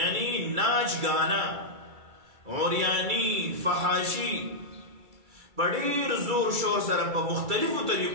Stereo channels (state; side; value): late; left; 2.3 ms